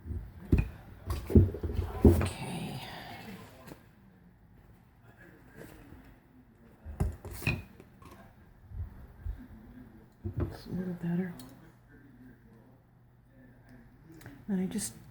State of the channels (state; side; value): identical; both; correlation 1.00